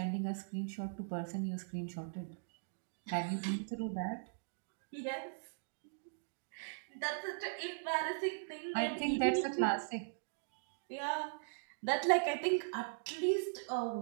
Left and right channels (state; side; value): silent; left; digital silence